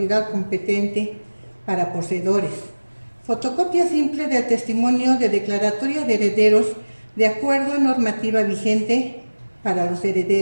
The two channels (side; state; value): both; inverted; correlation -1.00